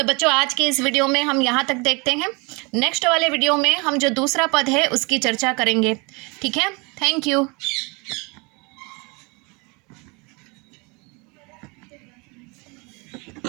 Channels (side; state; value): left; quieter; 28.9 dB